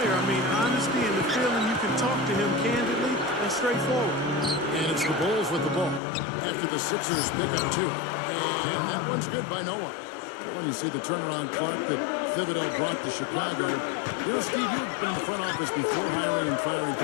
I mean, honesty and the feeling you can talk to him candidly and straightforward. And it's the Bulls with the ball after the Sixers pick up two. And that one's good by Noah. When you see the turnaround Clark that Thibodeau brought to Chicago, you know, Steve, you've been in the front office before hiring and firing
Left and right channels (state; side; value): drops out; right; at 6.0 s